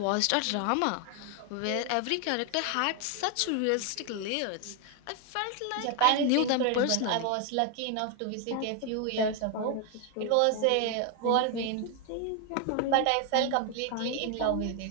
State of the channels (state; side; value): different; both; correlation 0.01